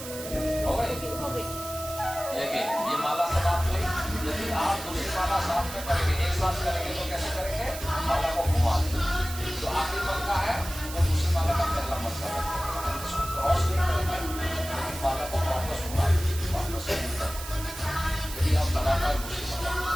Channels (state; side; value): noise; right; hiss, 11 dB below the sound